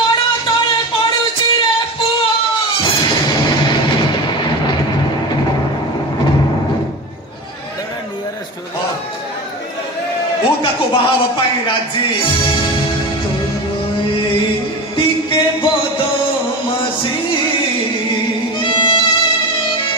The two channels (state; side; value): normal; both; correlation 0.27